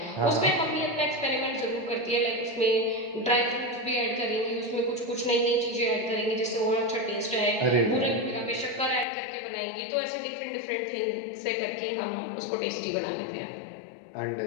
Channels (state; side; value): drops out; right; at 9.1 s